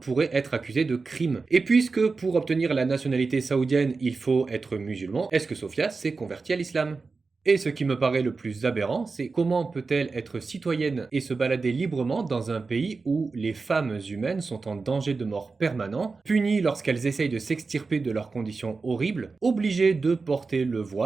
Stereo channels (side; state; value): left; quieter; 4.2 dB